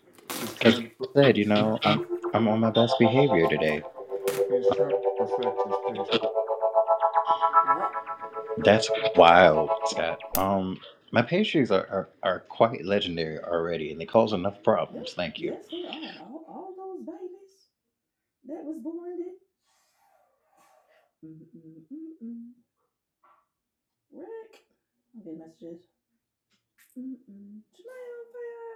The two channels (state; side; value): identical; both; correlation 1.00